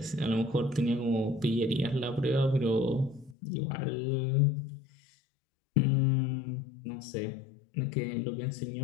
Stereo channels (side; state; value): right; drops out; at 3.4 s